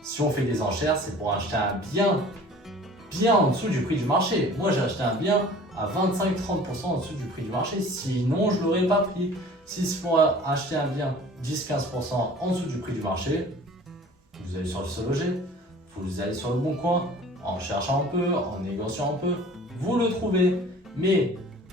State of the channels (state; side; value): normal; both; correlation 0.46